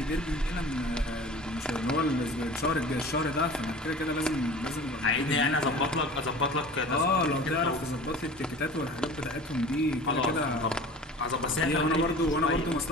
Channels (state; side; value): normal; both; correlation 0.40